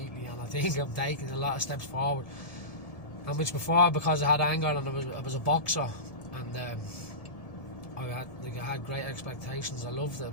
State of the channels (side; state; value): right; late; 1.7 ms